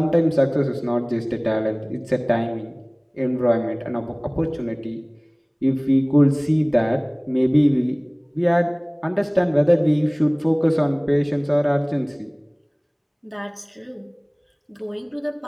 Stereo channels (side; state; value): both; identical; correlation 1.00